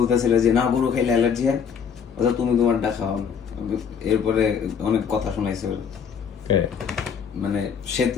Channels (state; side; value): quieter; right; 7.1 dB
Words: যে না গরু খাইলে অ্যালার্জি হয়, অথবা তুমি তোমারটা খাও। এরপরে অনেক কথা শোনাইছে, মানে সে